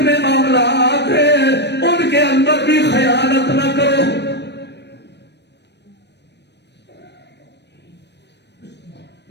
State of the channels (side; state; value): right; late; 0.50 ms